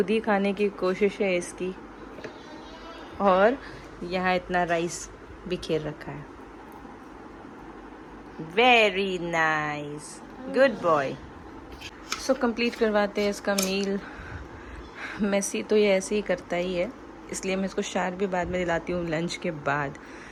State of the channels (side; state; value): both; identical; correlation 1.00